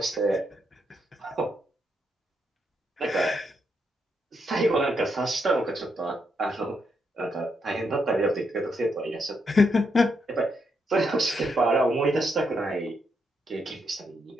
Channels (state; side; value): normal; both; correlation 0.79